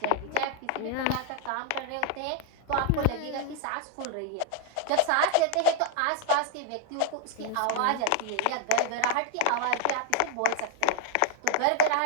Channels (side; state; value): both; different; correlation 0.00